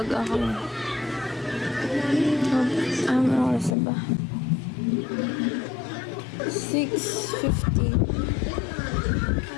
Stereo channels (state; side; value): drops out; right; at 3.8 s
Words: ako. Ano oras na ba? 6:50.